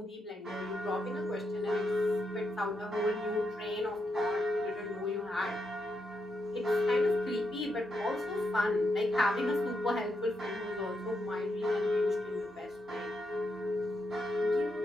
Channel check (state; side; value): normal; both; correlation 0.82